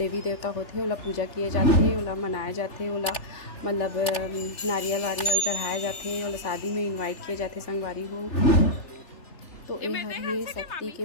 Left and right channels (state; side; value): late; right; 3.4 ms